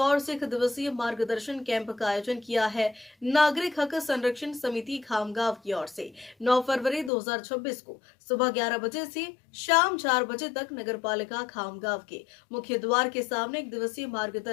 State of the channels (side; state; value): right; drops out; at 7.1 s